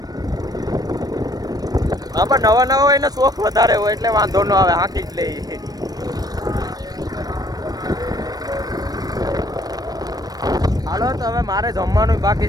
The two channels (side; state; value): left; late; 0.19 ms